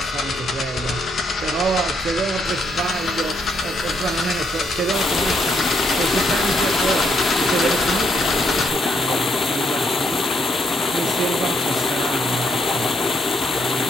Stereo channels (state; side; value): normal; both; correlation 0.74